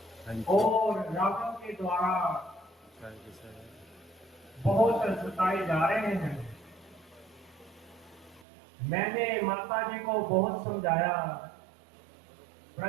हाँ जी। और रावण के द्वारा सही जी, सही। बहुत सताए जा रहे हैं। मैंने माता जी को बहुत समझाया,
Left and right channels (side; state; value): left; drops out; at 8.5 s